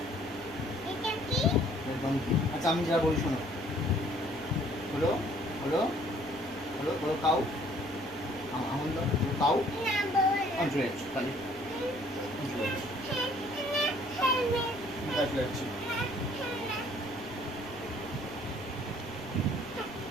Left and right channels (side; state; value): right; noise; rumble, 19 dB below the sound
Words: ডঙ্কি। আচ্ছা আমি যা বলি শোনো, হলো হলো হলো হলো কাউ, আমন কাউ আন্ড্রেজ খালি যাচ্ছি।